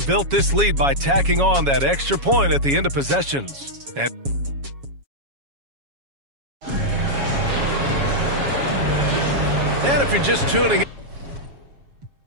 this lead by tacking on that extra point at the end of possessions. And if you're just tuning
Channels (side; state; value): left; late; 7.2 ms